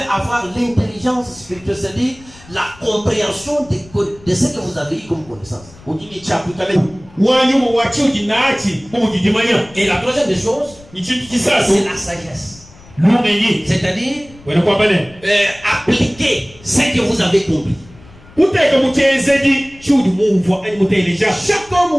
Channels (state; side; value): noise; left; rumble, 23 dB below the sound